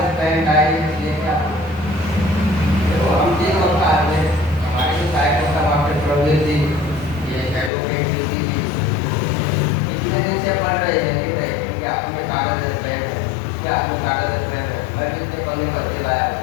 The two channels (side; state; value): right; drops out; at 7.7 s